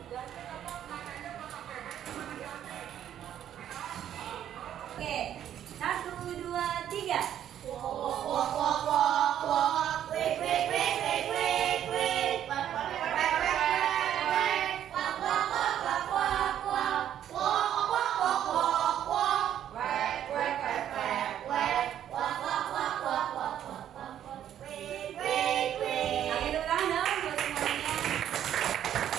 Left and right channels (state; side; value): quieter; left; 10.5 dB